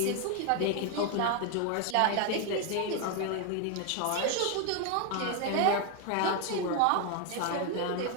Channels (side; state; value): both; different; correlation 0.01